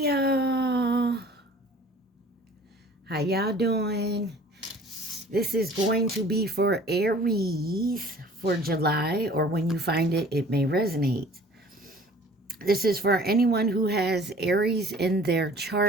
y'all, how y'all doing? This is going to be for Aries for July, or when you find it, it may resonate. This is for anyone who has Aries in their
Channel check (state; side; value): normal; both; correlation 0.49